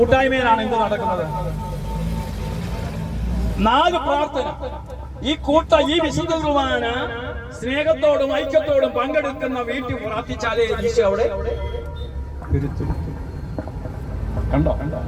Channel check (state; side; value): identical; both; correlation 1.00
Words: എന്ത് നടക്കുന്നത്? 4 പ്രാർത്ഥന. ഈ വിശുദ്ധ കുർബാന സ്നേഹത്തോടും ഐക്യത്തോടും പങ്കെടുക്കുന്ന വീട്ടിൽ പ്രാർത്ഥിച്ചാലേ ഈശോ അവിടെ കണ്ടോ?